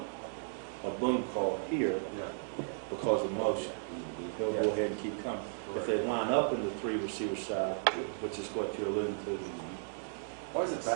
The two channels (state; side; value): silent; left; digital silence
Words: boom call here Yeah. because of motion. He'll go ahead and keep coming. If they line up in the 3 receiver side, which is what you're alluding to, Why does the